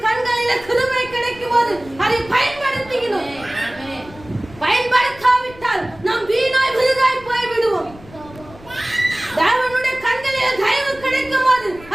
கண்களில கிருபை கிடைக்கும் போது அதை பயன்படுத்திக்கணும். பயன்படுத்தாவிட்டால் நாம் வீணாய் விருதாய் போய் விடுவோம். தேவனுடைய கண்களில் தயவு கிடைக்கும் போது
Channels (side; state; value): left; noise; rumble, 20 dB below the sound